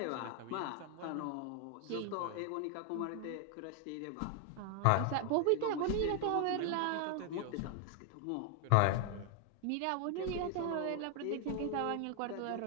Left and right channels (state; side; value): different; both; correlation 0.00